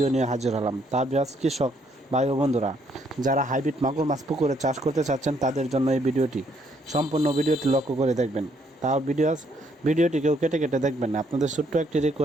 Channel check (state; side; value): normal; both; correlation 0.70